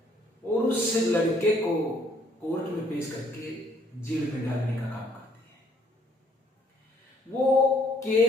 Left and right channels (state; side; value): normal; both; correlation 0.65